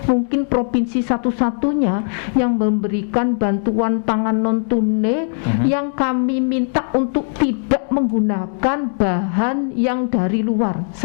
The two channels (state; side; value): silent; right; digital silence